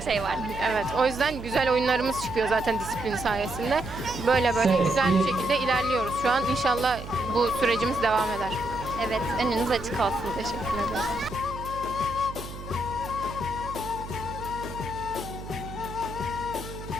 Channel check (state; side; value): noise; right; hum, 11 dB below the sound